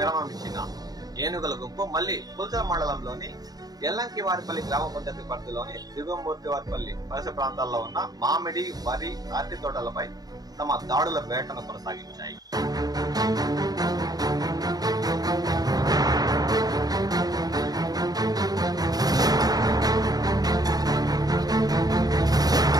ఇచ్చిన ఏనుగుల గుంపు మళ్లీ పుల్చల మండలంలోని ఎల్లంకివారిపల్లి గ్రామ పంచాయతీ పరిధిలోని దిగువమూర్తివారిపల్లి పరిసర ప్రాంతాల్లో ఉన్న మామిడి, వరి, అరటి తోటలపై తమ దాడుల వేటను కొనసాగించాయి.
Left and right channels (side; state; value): left; late; 0.18 ms